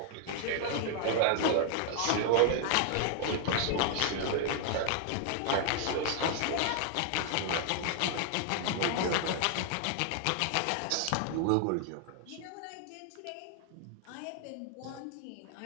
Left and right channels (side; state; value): both; different; correlation 0.00